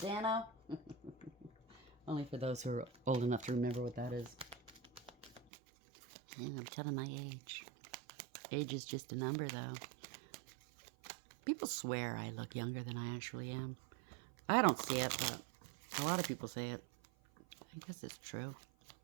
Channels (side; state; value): left; drops out; at 5.5 s